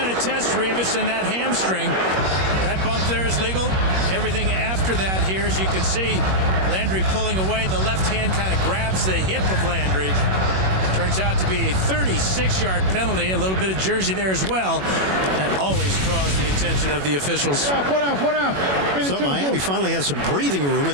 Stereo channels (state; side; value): late; left; 21 ms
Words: to test Revis in that hamstring. That bump there is legal. Everything after that here, as you can see, Landry pulling away. The left hand kind of grabs the hip of Landry. Turns out to be a 36-yard penalty. A little bit of jersey there as well. That always draws the attention of the officials. So Miami finally has some breathing room,